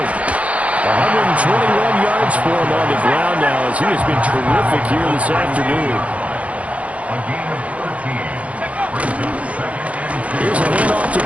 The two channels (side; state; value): left; late; 0.065 ms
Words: 121 yards for him on the ground now as he has been terrific here this afternoon. Here's a handoff to